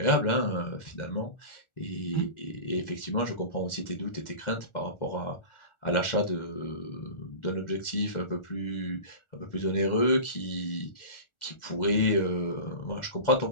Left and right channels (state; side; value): late; right; 1.4 ms